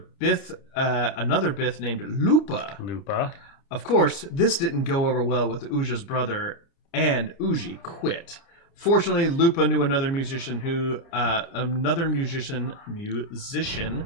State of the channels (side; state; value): right; late; 30 ms